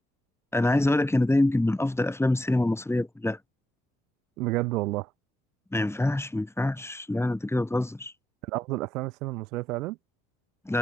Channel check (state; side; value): normal; both; correlation 0.83